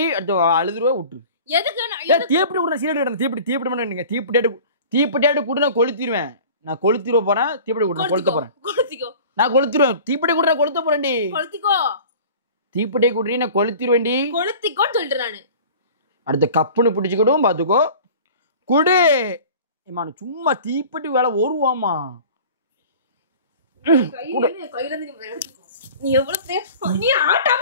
அடுத்து அழுதுருவா விட்டு. எதுக்கு தீப்பிட்டு விடுற சீரட் தீப்பிட்டு பண்ணீங்க. தீப்பிட்டு கூட நான் கொளுத்திடுவேன். நான் கொளுத்திடுவ போறேன். தீப்பிட்டு கூட கொளுத்த போறேன். நான் கொளுத்திடுவேன். தீப்பிட்டு கூட கொளுத்த போறேன்டி. கொளுத்திக்கோ. தீப்பிட்டே குடுறீ நான் கொளுத்திடுவேன்டி. கொளுத்திக்கோன்னு சொல்லிட்டு நானு. அடுத்த கப்புன்னு பிடிச்சுக்கிடும் பாத்துக்கோ. குடு. சும்மா தீப்பிட்டு வேலை வருவாமா. நீ எவ்வளவு நீ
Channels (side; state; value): both; inverted; correlation -0.42